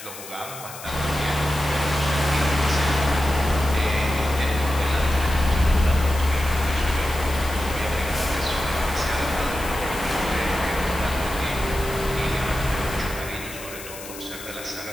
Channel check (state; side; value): noise; left; hiss, 13 dB below the sound